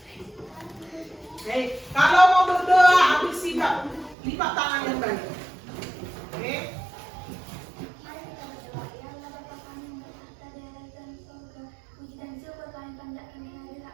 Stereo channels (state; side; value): drops out; left; at 4.2 s